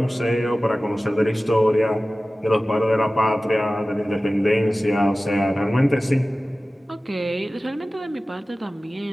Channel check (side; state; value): both; normal; correlation 0.96